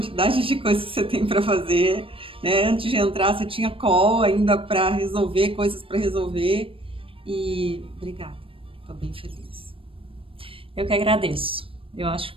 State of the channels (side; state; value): left; late; 0.26 ms